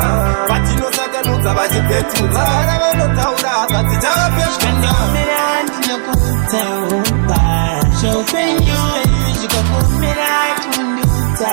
Patino Satanuza, Vajipetuza, Taura, Patijapa, and your man, no good town. So when you go for me, I can do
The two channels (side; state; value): left; silent; digital silence